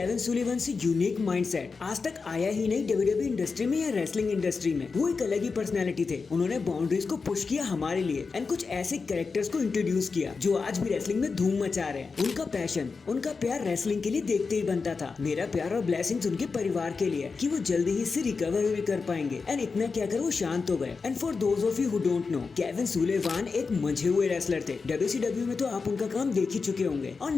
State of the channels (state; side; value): quieter; right; 4.7 dB